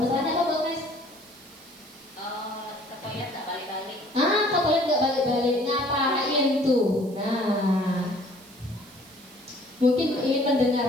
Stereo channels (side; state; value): right; noise; hiss, 23 dB below the sound